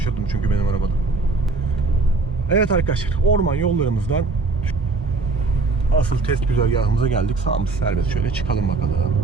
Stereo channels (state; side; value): quieter; left; 3.7 dB